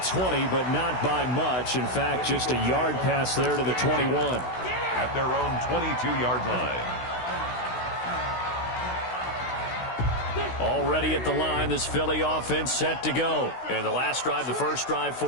but not by much. In fact, just a yard pass there to the 21. At their own 22-yard line. Already at the line, this Philly offense set to go. And the last drive, the first drive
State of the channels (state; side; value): late; right; 16 ms